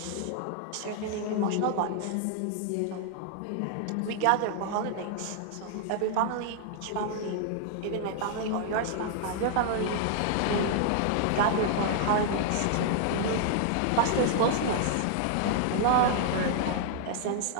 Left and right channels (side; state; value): both; different; correlation -0.01